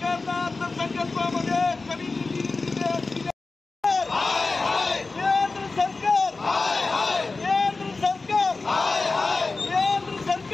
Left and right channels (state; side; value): quieter; right; 3.8 dB